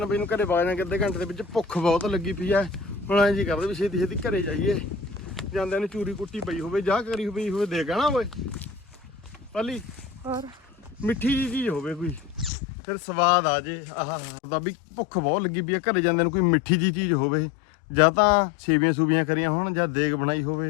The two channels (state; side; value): drops out; right; at 12.5 s